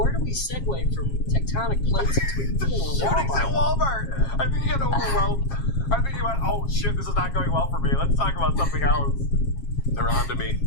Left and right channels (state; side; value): late; right; 7.4 ms